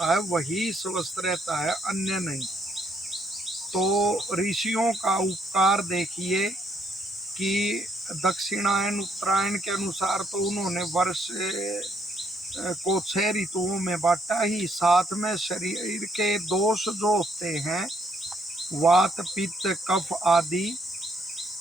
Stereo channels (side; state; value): both; normal; correlation 0.71